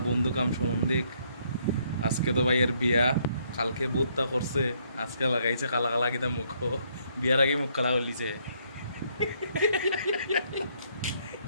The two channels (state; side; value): inverted; both; correlation -0.70